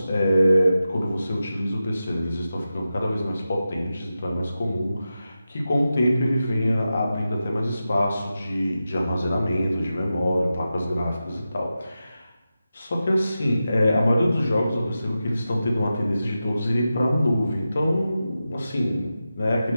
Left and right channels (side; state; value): both; inverted; correlation -0.92